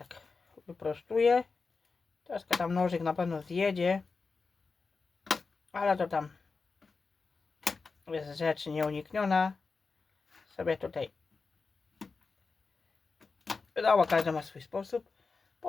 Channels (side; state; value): right; quieter; 4.5 dB